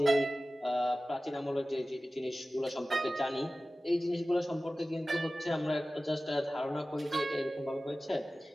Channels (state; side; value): normal; both; correlation 0.96